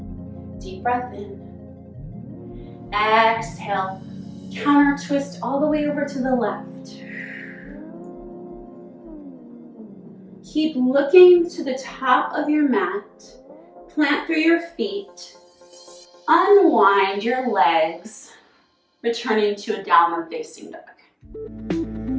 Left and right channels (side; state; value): both; identical; correlation 1.00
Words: Deep breath in. Exhale. Counter twist all the way over to the left. Keep looking to the top of your mat. Plant through your feet. Unwind your legs, returning to a downward facing dog.